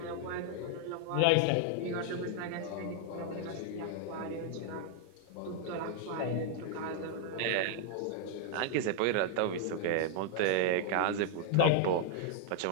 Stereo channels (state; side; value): different; both; correlation 0.00